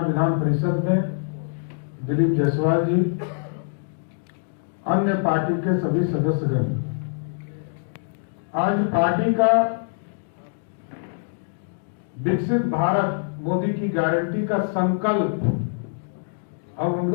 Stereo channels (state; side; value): silent; right; digital silence